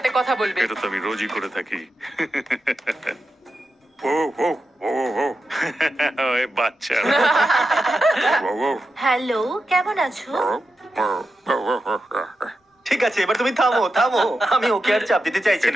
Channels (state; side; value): normal; both; correlation 0.89